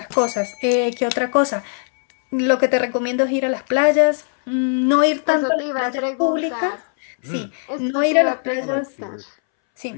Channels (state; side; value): silent; right; 64 dB below the other